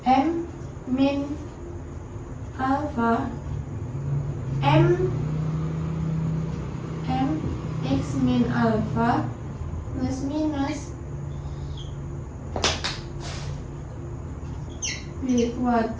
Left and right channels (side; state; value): both; identical; correlation 1.00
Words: M min alfa M X min alfa plus minus B